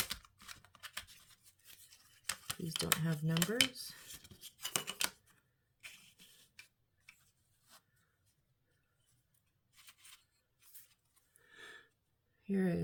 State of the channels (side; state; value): both; identical; correlation 1.00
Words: These don't have numbers. Here